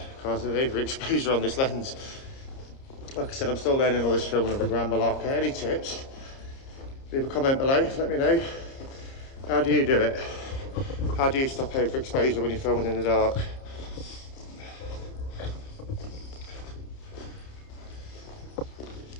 because of the overexposure on this lens. Like I said, I'm still learning all this filming of the Grand Malacca. Any tips? Leave a comment below, let me know. How do you do it? How do you stop overexposure when you're filming in the dark?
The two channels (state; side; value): late; right; 30 ms